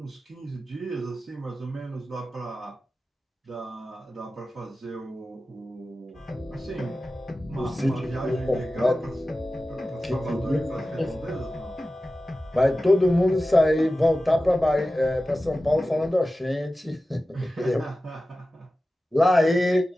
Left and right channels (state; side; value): normal; both; correlation 0.95